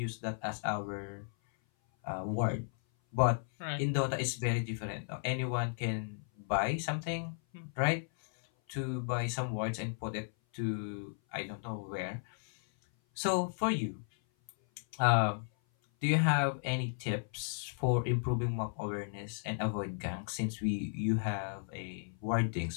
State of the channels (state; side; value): silent; right; 55 dB below the other